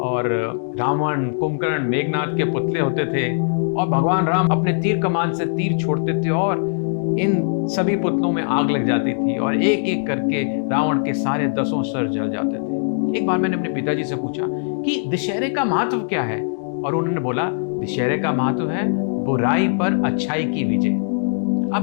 रावण, कुंभकर्ण, मेघनाथ के पुतले होते थे और भगवान राम अपने तीर कमान से तीर छोड़ते थे और इन सभी पुतलों में आग लग जाती थी और एक एक करके रावण के सारे 10 सर जल जाते थे। एक बार मैंने अपने पिताजी से पूछा कि दशहरे का महत्व क्या है, और उन्होंने बोला दशहरे का महत्व है बुराई पर अच्छाई की विजय।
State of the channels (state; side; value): silent; right; digital silence